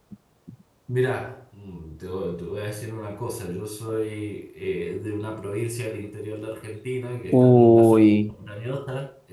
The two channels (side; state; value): both; identical; correlation 1.00